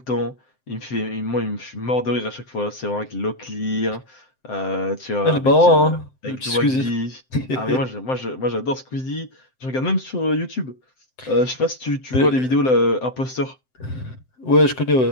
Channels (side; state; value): right; late; 7.7 ms